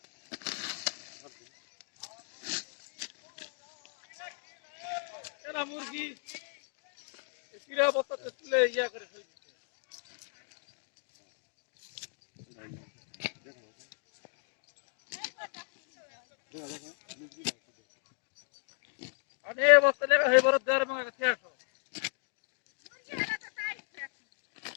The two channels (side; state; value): right; silent; 54 dB below the other